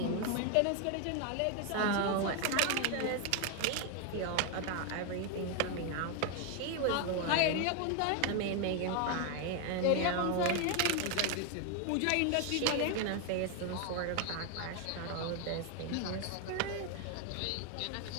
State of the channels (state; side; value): different; both; correlation 0.01